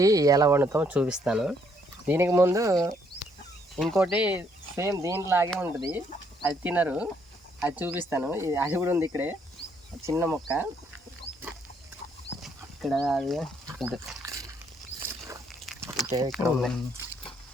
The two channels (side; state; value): both; normal; correlation 0.70